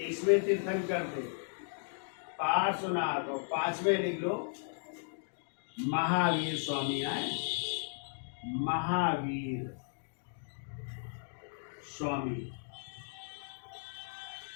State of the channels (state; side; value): silent; right; digital silence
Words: तीर्थंकर थे, पार्श्वनाथ। और 5वें लिख लो महावीर स्वामी आए, महावीर स्वामी,